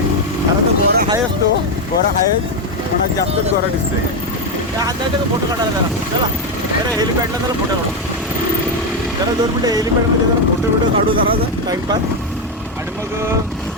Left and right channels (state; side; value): normal; both; correlation 0.07